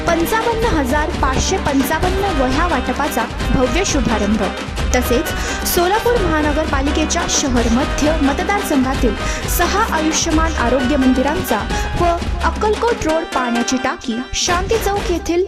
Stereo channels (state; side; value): identical; both; correlation 1.00